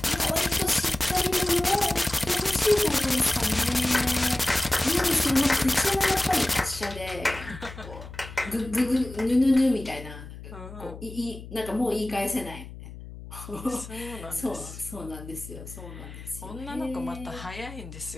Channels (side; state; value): left; noise; hum, 13 dB below the sound